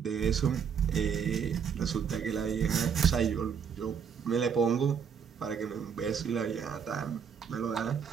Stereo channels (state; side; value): quieter; left; 7.1 dB